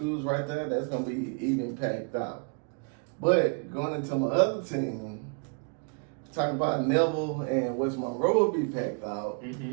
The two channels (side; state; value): left; quieter; 38.6 dB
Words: right there, that's going to be even packed out. But going into my other team, talking about Neville and West Monroe will be packed out.